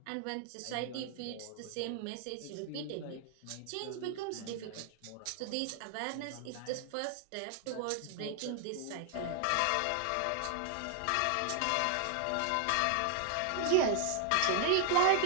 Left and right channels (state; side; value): different; both; correlation 0.00